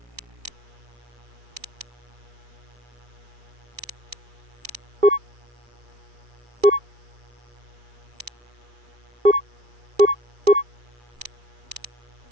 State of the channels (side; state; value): left; late; 2.4 ms